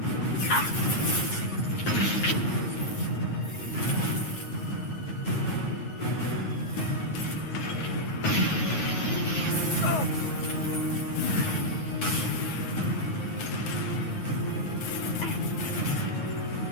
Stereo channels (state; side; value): late; right; 9.4 ms